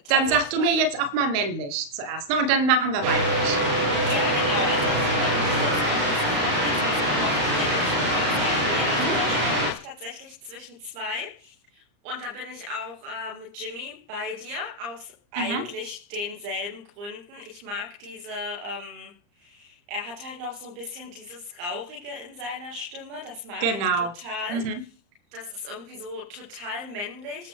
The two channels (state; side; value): late; left; 35 ms